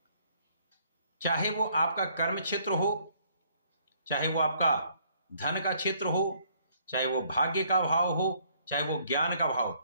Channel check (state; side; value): inverted; both; correlation -0.65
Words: चाहे वो आपका कर्म क्षेत्र हो, चाहे वो आपका धन का क्षेत्र हो, चाहे वो भाग्य का भाव हो, चाहे वो ज्ञान का